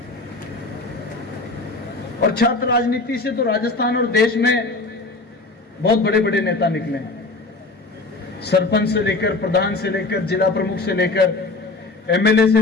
और छात्र राजनीति से तो राजस्थान और देश में बहुत बड़े बड़े नेता निकले हैं। सरपंच से लेकर, प्रधान से लेकर, जिला प्रमुख से लेकर, एमएलए से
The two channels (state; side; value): quieter; right; 3.4 dB